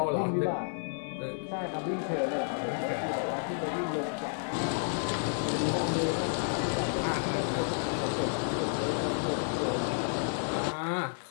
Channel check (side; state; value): right; silent; 57 dB below the other